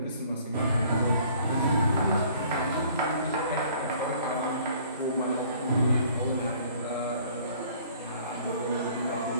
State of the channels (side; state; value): both; inverted; correlation -0.55